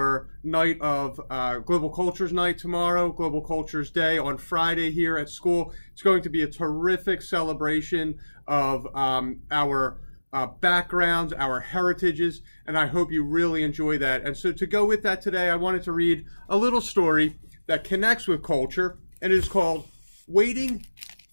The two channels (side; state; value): both; inverted; correlation -1.00